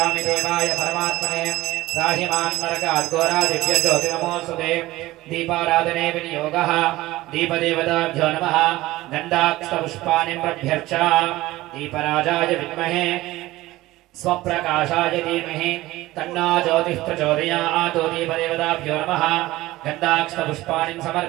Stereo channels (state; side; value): quieter; left; 17.7 dB